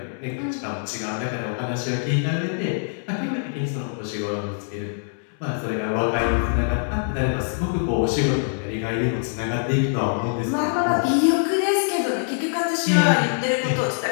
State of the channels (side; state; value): right; silent; 63 dB below the other